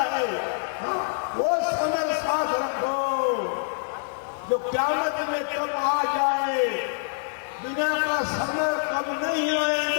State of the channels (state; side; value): silent; right; digital silence